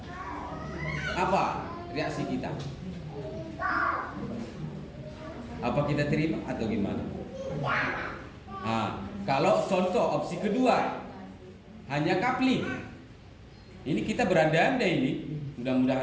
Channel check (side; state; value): both; identical; correlation 1.00